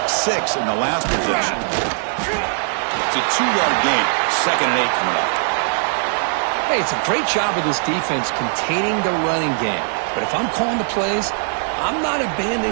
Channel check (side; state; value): left; silent; 66 dB below the other